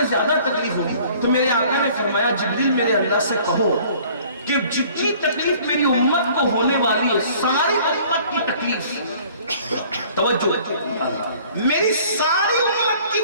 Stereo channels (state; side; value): inverted; both; correlation -0.53